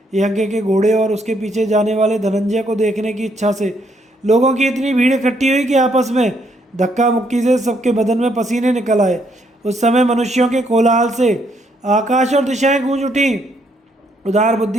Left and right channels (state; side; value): normal; both; correlation 0.72